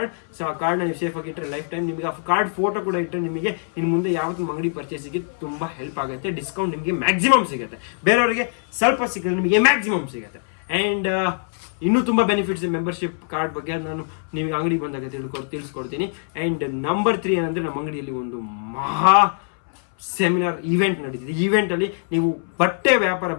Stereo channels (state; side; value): silent; right; 61 dB below the other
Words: ಸೊ ಆ ಕಾರ್ಡ್ನ ನೀವು ಸೇಫ್ ಆಗಿ ಇಟ್ಟರೆ ಲೈಫ್ ಟೈಮ್ ನಿಮಗೆ ಆ ಕಾರ್ಡ್ ಫೋಟೋ ಕೂಡ ಇಟ್ಟರೆ ನಿಮಗೆ ಇನ್ನು ಮುಂದೆ ಯಾವತ್ತೂ ಅಂಗಡಿ ಪರ್ಚೇಸಿಗೆ ತುಂಬ ಹೆಲ್ಪ್ ಆಗುತ್ತೆ. ಡಿಸ್ಕೌಂಟ್ ನಿಮಗೆ ಮ್ಯಾಕ್ಸಿಮಮ್ ಸಿಗುತ್ತೆ, ಬೇರೆಯವರಿಗೆ ಸ್ವಲ್ಪ ಸಿಗುತ್ತೆ, ನಿಮಗೆ ಮ್ಯಾಕ್ಸಿಮಮ್ ಸಿಗುತ್ತೆ. ಆ್ಯಂಡ್ ಇನ್ನೂ ತುಂಬ ಬೆನಿಫಿಟ್ಸ್ ಮೆಂಬರ್ಶಿಪ್ ಕಾರ್ಡ್ ಬಗ್ಗೆ ನಾನು ನಿಮಗೆ ಅಂಗಡಿ ಬಂದಾಗ ತಿಳಿಸ್ಕೊಡ್ತೀನಿ. ಆ್ಯಂಡ್ ನಂಬರ್ 3 ಏನಂದರೆ, ನಮ್ಮ ಅಂಗಡಿಯಲ್ಲಿ ಒಂದು ಮಹಾ ಸೆಮಿನಾರ್ ಈವೆಂಟ್ ನಡೀತಿದೆ. ಈವೆಂಟಲ್ಲಿ ನೀವು ಬಟ್ಟೆ ವ್ಯಾಪಾರ